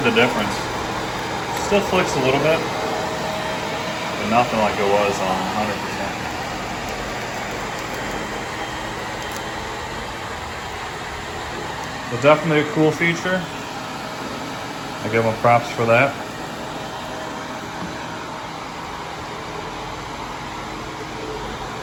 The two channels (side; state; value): both; identical; correlation 1.00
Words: the difference. Still flicks a little bit, but nothing like it was on 100%. But definitely a cool feature. I give them props for that.